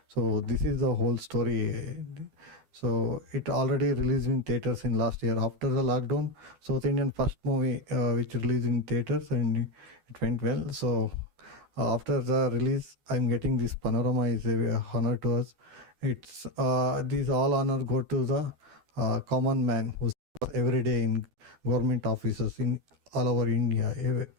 So this is the whole story. So it already released in theaters in last year after the lockdown. South Indian first movie which released in theaters, and it went well. So after the release, I'm getting this panorama is a honor to us. It's these all honor go to the common man who's every day in government offices in all over India.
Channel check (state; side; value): late; left; 12 ms